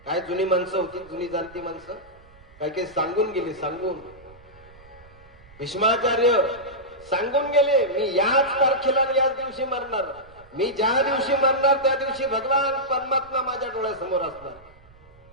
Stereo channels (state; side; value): noise; right; rumble, 24 dB below the sound